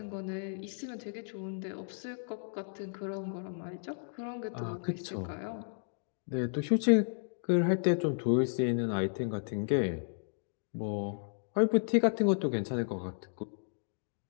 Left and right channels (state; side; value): silent; right; digital silence